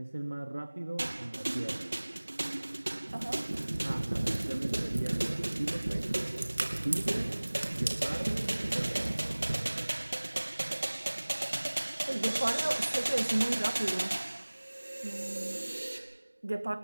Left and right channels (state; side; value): inverted; both; correlation -1.00